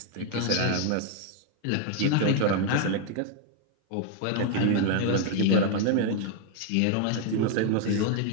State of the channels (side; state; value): both; different; correlation 0.00